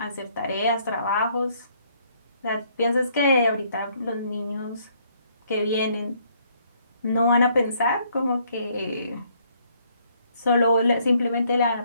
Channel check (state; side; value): inverted; both; correlation -0.67